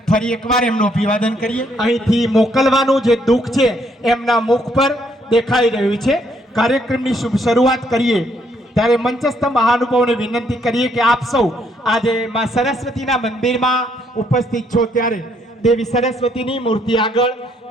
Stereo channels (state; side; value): normal; both; correlation 0.70